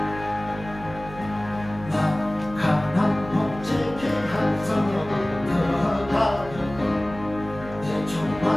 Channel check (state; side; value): noise; right; hum, 14 dB below the sound